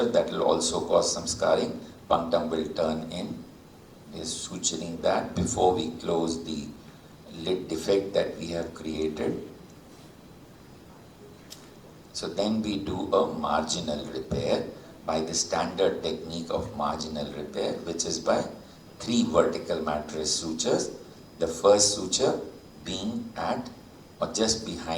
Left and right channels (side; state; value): both; identical; correlation 1.00